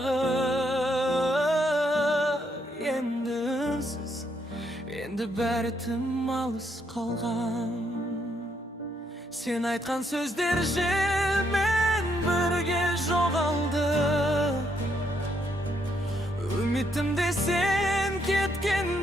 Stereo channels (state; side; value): normal; both; correlation 0.74